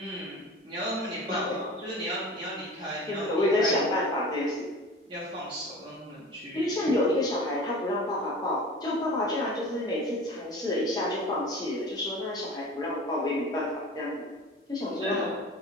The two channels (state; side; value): normal; both; correlation 0.38